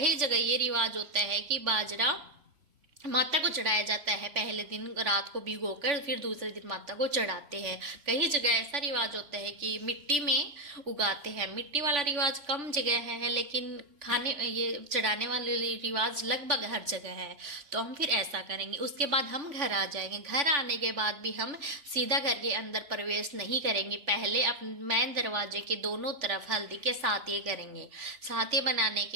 जगह ये रिवाज होता है कि बाजरा माता को चढ़ाया जाता है। पहले दिन रात को भिगोकर फिर दूसरे दिन माता को चढ़ाते हैं। कई जगह ऐसा रिवाज होता है कि मिट्टी में उगाते हैं। मिट्टी वाला रिवाज कम जगह है, लेकिन खाने ये चढ़ाने वाले रिवाज लगभग हर जगह है। तो हम फिर ऐसा करेंगे। उसके बाद हम घर आ जाएंगे। घर आने के बाद भी हम सीधा घर के अंदर प्रवेश नहीं करेंगे। पहले अपने मेन दरवाजे के दोनों तरफ हल्दी के साथिये करेंगे। साथिये बनाने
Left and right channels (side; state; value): left; late; 3.5 ms